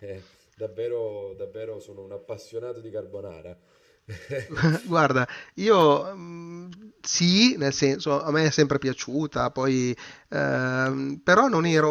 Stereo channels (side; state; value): both; identical; correlation 1.00